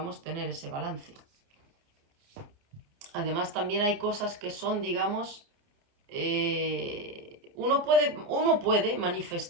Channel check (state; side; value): late; left; 29 ms